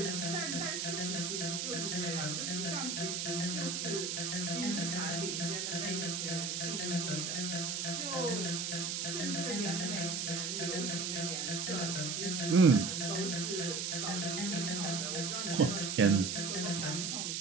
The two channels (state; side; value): noise; right; hiss, 2 dB below the sound